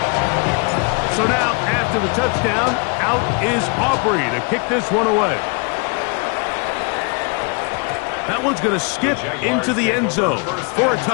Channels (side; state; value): right; quieter; 34.8 dB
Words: So now, after the touchdown, out is Aubrey to kick this one away. That one's going to skip into the end zone for a